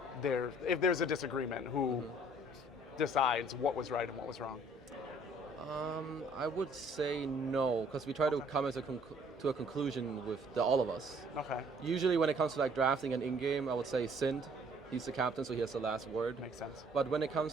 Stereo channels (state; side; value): normal; both; correlation 0.59